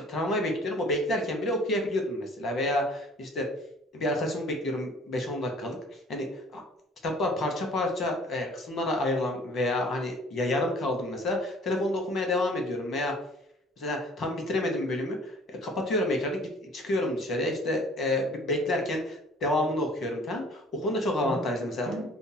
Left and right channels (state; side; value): normal; both; correlation 0.52